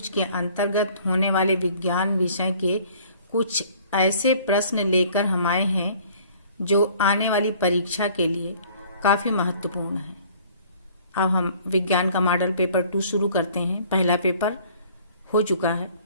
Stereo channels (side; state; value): both; inverted; correlation -0.54